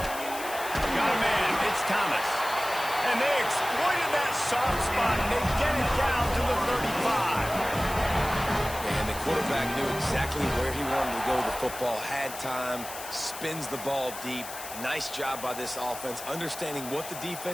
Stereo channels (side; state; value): left; noise; hiss, 11 dB below the sound